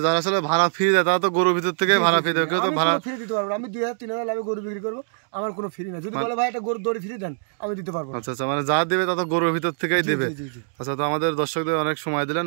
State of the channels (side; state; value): left; silent; digital silence